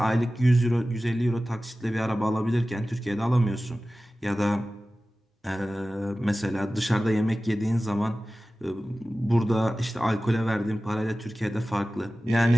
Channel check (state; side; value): normal; both; correlation 0.96